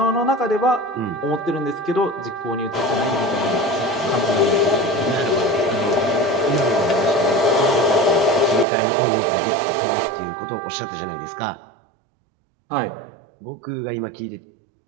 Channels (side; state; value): left; drops out; at 8.7 s